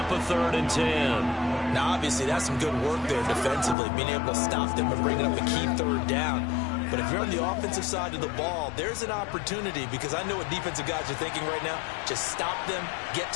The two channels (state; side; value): drops out; right; at 3.8 s